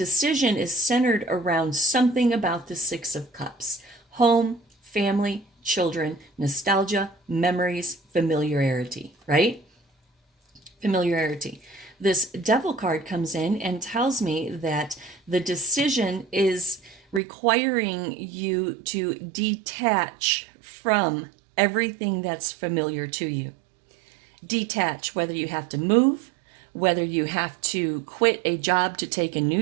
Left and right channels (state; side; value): drops out; left; at 17.2 s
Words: is centered around something about the Six of Cups: home, family, children, nostalgia, memories, familiarity, right? Familiarity. This Devil card comes in and tells me that the decision is requiring you to detach from everything that's familiar to you. Detach, whether you have to move, whether you have to quit a job to take a